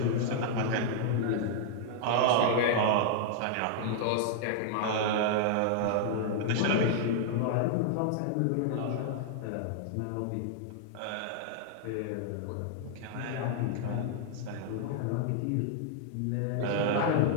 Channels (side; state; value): both; different; correlation -0.01